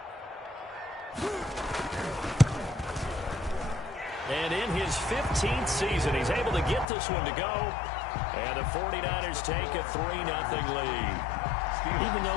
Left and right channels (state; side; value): drops out; right; at 6.9 s